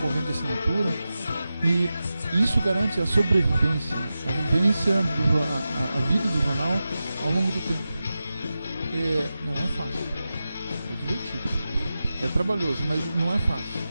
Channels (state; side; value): inverted; both; correlation -0.93